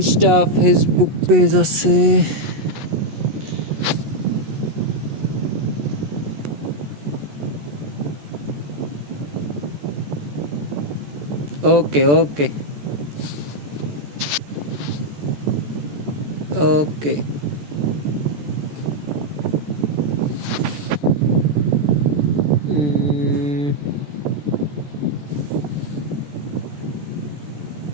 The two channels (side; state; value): left; late; 14 ms